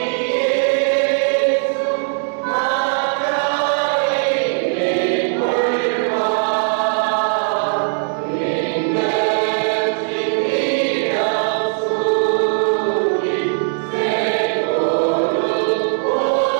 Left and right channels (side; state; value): left; silent; 62 dB below the other